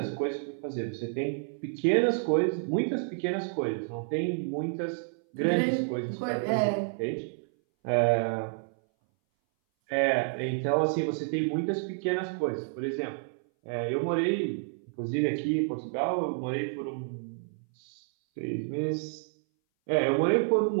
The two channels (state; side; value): silent; left; 58 dB below the other